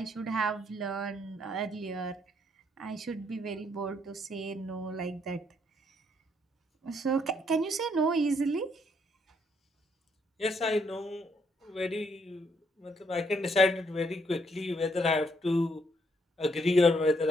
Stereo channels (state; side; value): normal; both; correlation 0.71